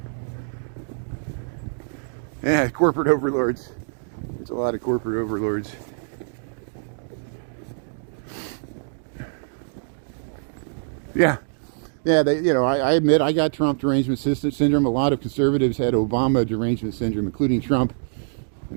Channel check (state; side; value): silent; left; digital silence